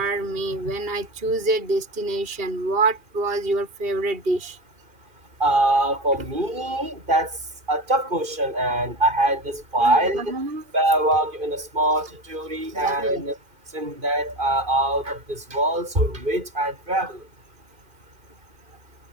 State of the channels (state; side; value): late; left; 2.5 ms